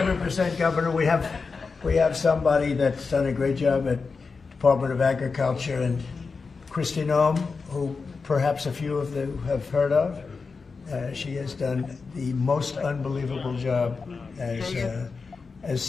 Governor. We have somebody that's done a great job at Department of Agriculture, and Christi, who perhaps a few of you have heard of. She has done the most unbelievable job as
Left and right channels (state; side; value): quieter; right; 4.7 dB